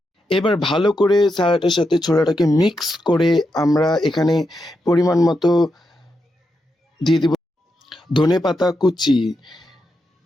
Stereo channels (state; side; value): normal; both; correlation 0.85